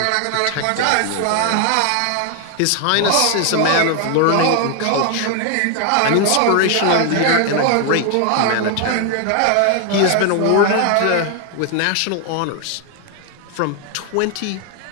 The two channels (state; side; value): different; both; correlation 0.00